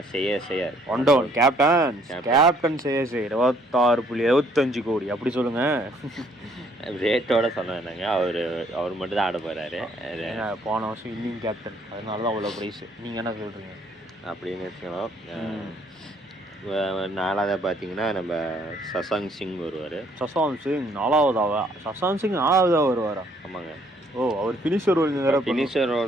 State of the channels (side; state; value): both; normal; correlation 0.64